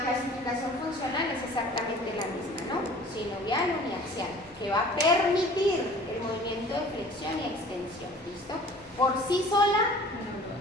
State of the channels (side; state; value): both; normal; correlation 0.47